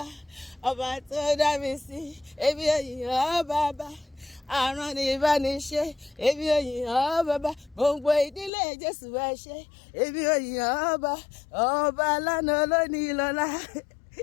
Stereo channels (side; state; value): right; drops out; at 8.5 s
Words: ọba tó dá mi sí. Èmi ò yìn ọ́ bàbá, àrùn ní ìbániṣe. Èmi ò yìn ọ́ bàbá, gbogbo ìdílé Jésù ẹ ṣé. Èmi ò yìn ọ́ ọba lánàá lónìí lọ́la,